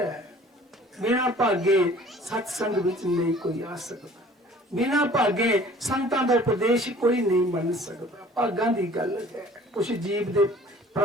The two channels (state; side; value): normal; both; correlation 0.50